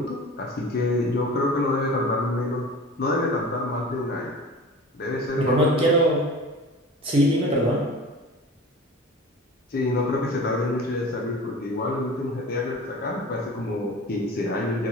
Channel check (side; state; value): both; normal; correlation 0.38